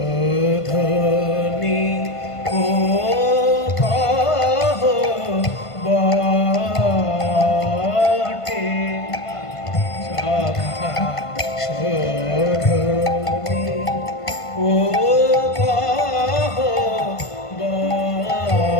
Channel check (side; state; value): right; late; 1.5 ms